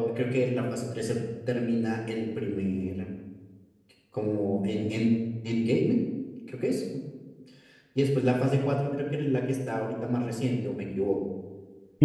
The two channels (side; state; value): both; identical; correlation 1.00